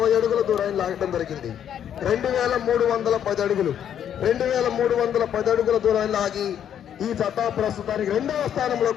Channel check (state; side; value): quieter; right; 9.5 dB